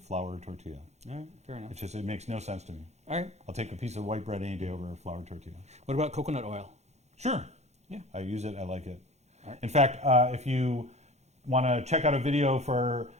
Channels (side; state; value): left; late; 0.32 ms